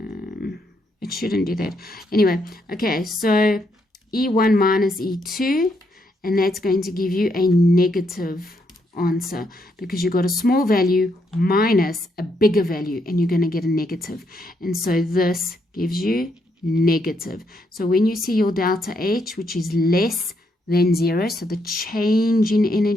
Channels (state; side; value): normal; both; correlation 0.76